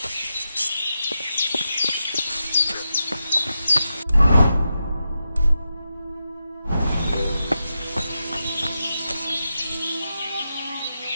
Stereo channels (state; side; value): inverted; both; correlation -0.88